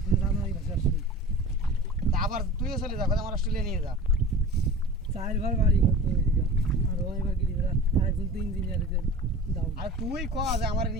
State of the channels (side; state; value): both; normal; correlation 0.38